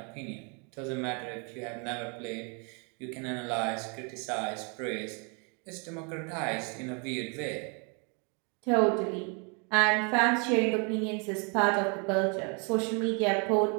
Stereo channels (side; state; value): left; quieter; 35.0 dB